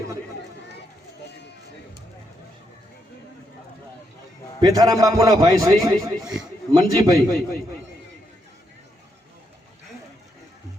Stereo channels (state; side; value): normal; both; correlation 0.80